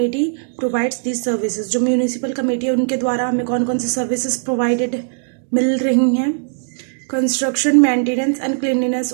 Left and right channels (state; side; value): silent; left; digital silence